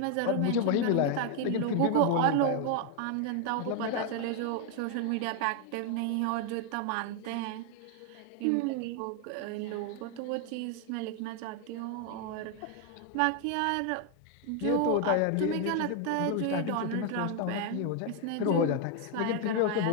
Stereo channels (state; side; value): different; both; correlation 0.00